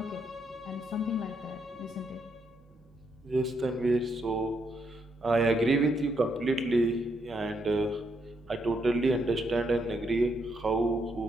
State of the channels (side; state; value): both; normal; correlation 0.77